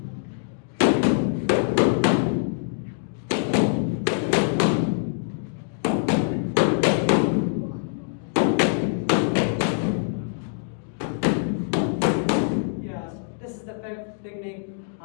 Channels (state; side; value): silent; right; digital silence